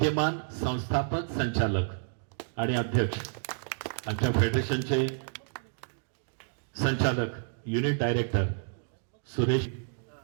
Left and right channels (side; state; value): left; silent; digital silence